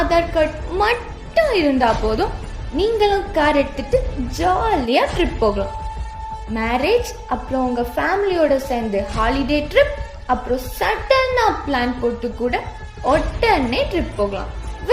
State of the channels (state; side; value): identical; both; correlation 1.00